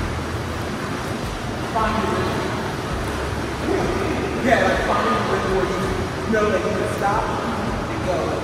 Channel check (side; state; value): both; identical; correlation 1.00